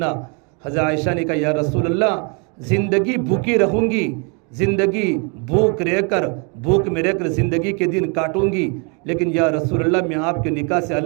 حضرت عائشہ نے کہا، یا رسول اللہ زندگی بھوکی رہوں گی، زندگی بھوک میں رہ کر زندگی کے دن کاٹوں گی، لیکن یا رسول اللہ میں آپ کے نکاح سے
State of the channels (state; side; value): quieter; left; 35.2 dB